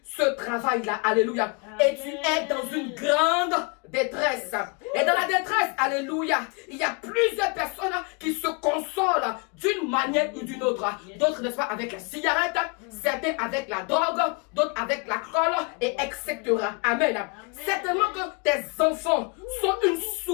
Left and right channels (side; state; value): right; quieter; 32.4 dB